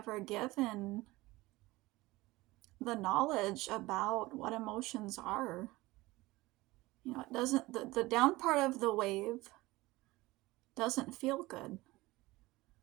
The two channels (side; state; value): left; quieter; 20.0 dB